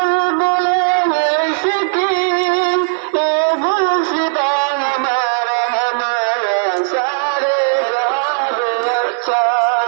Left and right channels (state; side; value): silent; left; 63 dB below the other